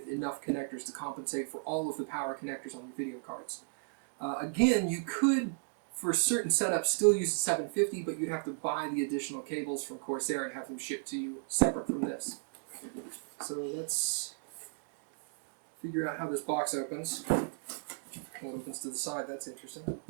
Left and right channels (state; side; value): silent; left; digital silence